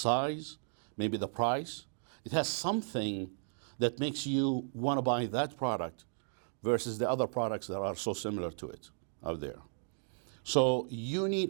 maybe the price. It has something that makes you want to buy that product versus the other products that are so similar to it out there. So you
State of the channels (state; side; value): silent; left; digital silence